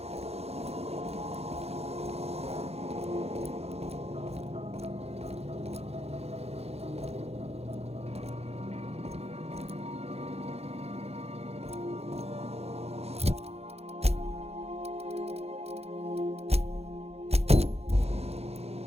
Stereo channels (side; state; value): left; late; 0.30 ms